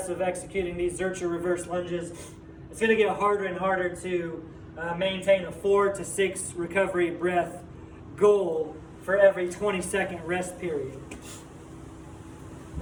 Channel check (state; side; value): identical; both; correlation 1.00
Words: of executing these Zercher reverse lunges, it's going to get harder and harder to maintain a 4 to 6 recovery breath goal for every 20-second rest period.